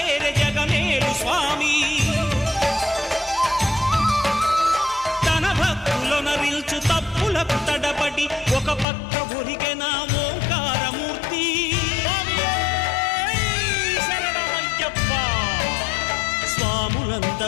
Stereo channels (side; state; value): right; drops out; at 8.8 s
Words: జగమేలు స్వామి తన భక్తులనరిల్చు తప్పులకు తడబడి ఒక పక్క ఒరిగెన ఓంకారమూర్తి